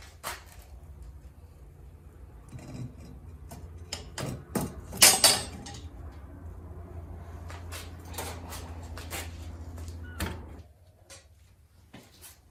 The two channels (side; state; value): both; identical; correlation 1.00